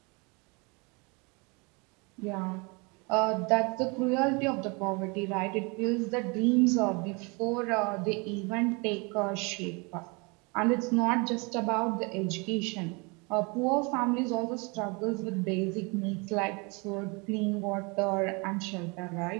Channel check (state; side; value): quieter; left; 29.7 dB